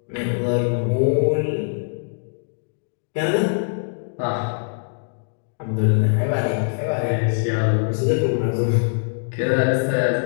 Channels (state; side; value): silent; right; digital silence